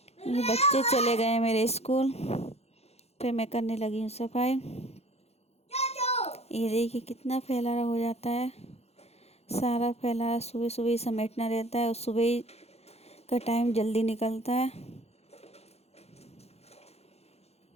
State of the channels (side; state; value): right; late; 0.30 ms